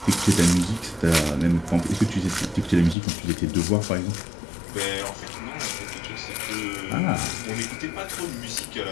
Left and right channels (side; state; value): right; drops out; at 3.0 s